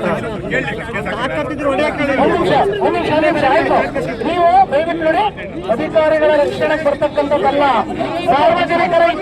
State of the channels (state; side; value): identical; both; correlation 1.00